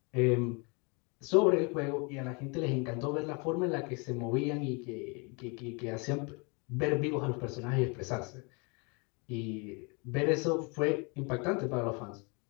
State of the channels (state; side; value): quieter; right; 32.0 dB